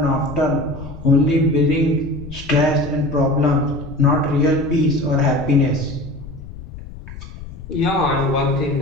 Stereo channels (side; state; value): left; noise; rumble, 14 dB below the sound